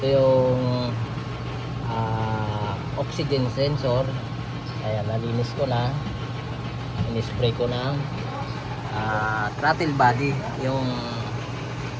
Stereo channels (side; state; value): both; identical; correlation 1.00